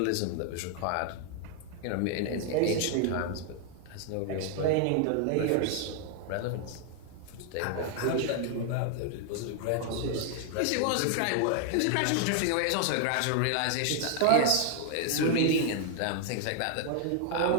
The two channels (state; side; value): different; both; correlation 0.00